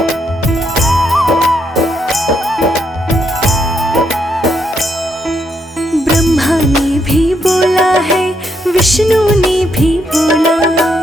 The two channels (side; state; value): both; normal; correlation 0.77